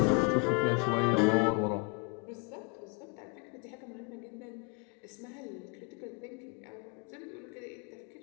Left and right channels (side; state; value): right; quieter; 31.1 dB